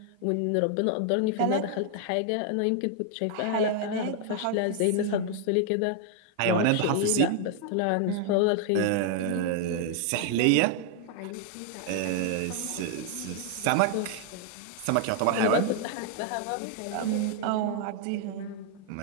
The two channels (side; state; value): both; different; correlation 0.00